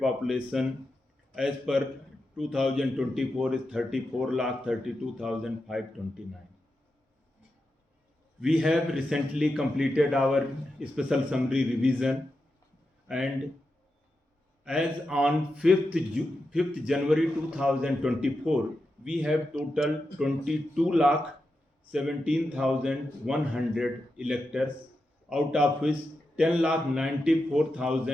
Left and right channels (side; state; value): both; normal; correlation 0.88